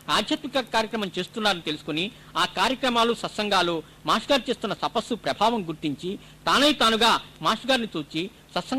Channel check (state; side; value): identical; both; correlation 1.00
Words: ఆధ్యాత్మిక కార్యక్రమం చేస్తున్నారని తెలుసుకుని ఆ కార్యక్రమాలు సత్సంగాలు మాస్టర్ గారు చేస్తున్న తపస్సు ప్రభావం గుర్తించి తానుగా మాస్టర్ గారిని చూచి